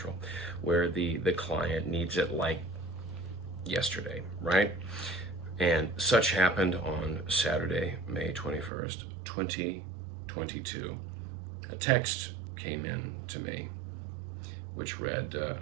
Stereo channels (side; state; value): left; drops out; at 8.7 s